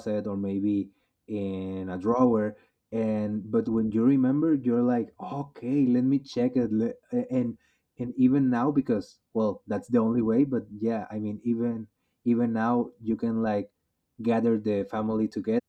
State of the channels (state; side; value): identical; both; correlation 1.00